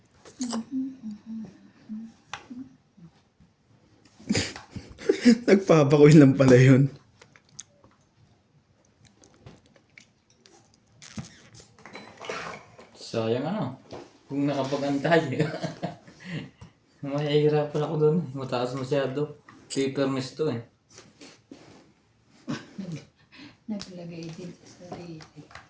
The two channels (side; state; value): both; identical; correlation 1.00